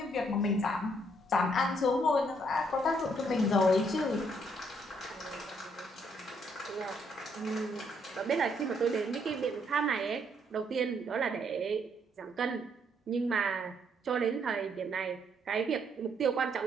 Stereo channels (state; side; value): normal; both; correlation 0.71